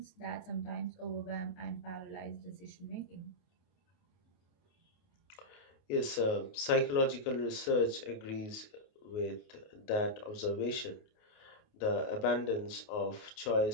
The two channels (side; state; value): right; late; 29 ms